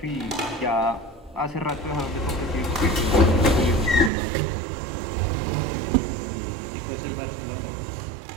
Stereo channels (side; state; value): left; drops out; at 4.1 s